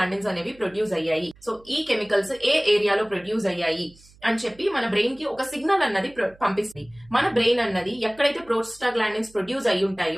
అనేవి ప్రొడ్యూస్ అయ్యాయి. సో ఈ కెమికల్స్ ఏ ఏరియాలో ప్రొడ్యూస్ అయ్యాయి అని చెప్పి మన బ్రెయిన్ కి ఒక సిగ్నల్ అన్నది పంపిస్తుంది. మన బ్రెయిన్ అన్నది ఎక్కడైతే ప్రోస్టాగ్లాండిన్స్ ప్రొడ్యూస్ అయి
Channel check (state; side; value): noise; right; hum, 27 dB below the sound